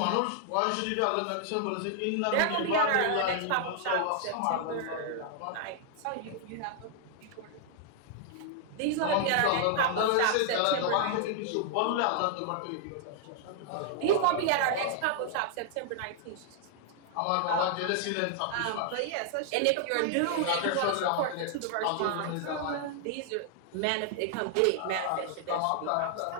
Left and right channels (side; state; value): both; different; correlation 0.00